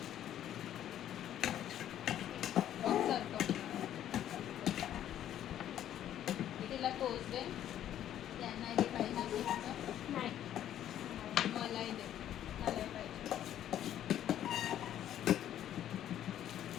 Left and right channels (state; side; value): quieter; right; 11.2 dB